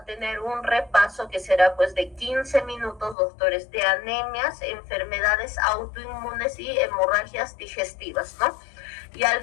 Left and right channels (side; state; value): right; drops out; at 3.2 s